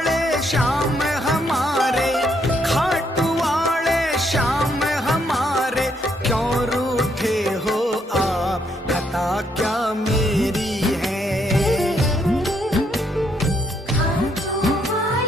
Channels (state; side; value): normal; both; correlation 0.73